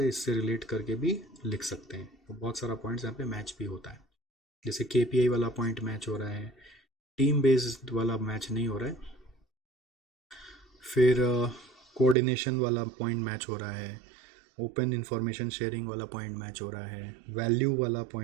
इससे रिलेट करके भी लिख सकते हैं। तो बहुत सारा पॉइंट्स यहाँ पे मैच भी होता है, जैसे केपीआई वाला पॉइंट मैच हो रहा है, टीम बेस्ड वाला मैच नहीं हो रहा है, फिर कोऑर्डिनेशन वाला पॉइंट मैच हो रहा है, ओपन इंफॉर्मेशन शेयरिंग वाला पॉइंट मैच हो रहा है, वैल्यू वाला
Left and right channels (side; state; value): left; drops out; at 12.2 s